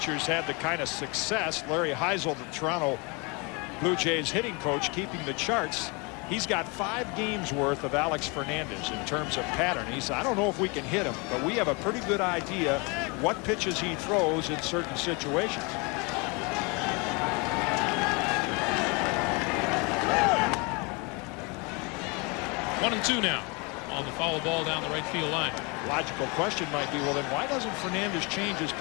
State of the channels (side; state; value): right; quieter; 29.8 dB